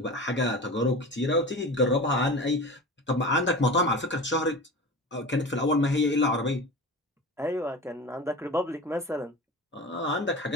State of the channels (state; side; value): normal; both; correlation 0.33